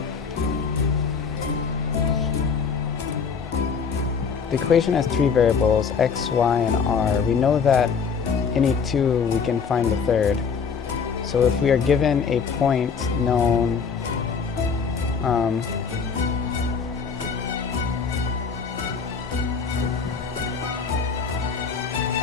The equation has three variables, x, y, and r. We know that any two, we can find the third. So if we are given a point known so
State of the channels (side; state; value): right; quieter; 5.9 dB